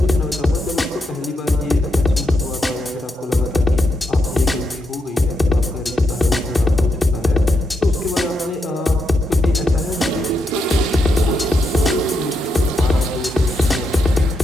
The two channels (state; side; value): normal; both; correlation 0.82